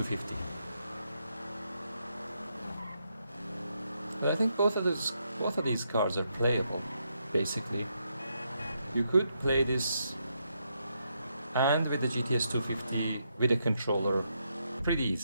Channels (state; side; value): inverted; both; correlation -0.80